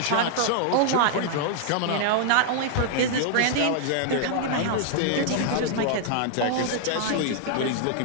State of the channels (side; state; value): both; different; correlation -0.01